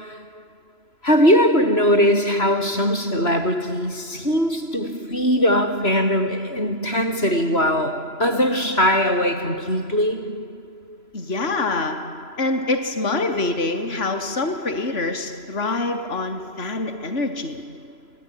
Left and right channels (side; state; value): right; late; 3.0 ms